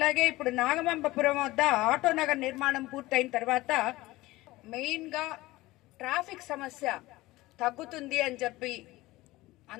ఇప్పుడు నాగమంబపురం వద్ద ఆటో నగర్ నిర్మాణం పూర్తయిన తర్వాత మెయిన్ గా ట్రాఫిక్ సమస్య తగ్గుతుంది అని చెప్పి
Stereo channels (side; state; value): right; quieter; 19.0 dB